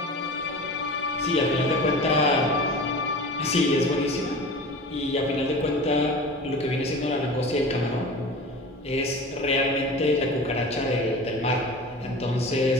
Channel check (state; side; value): normal; both; correlation 0.35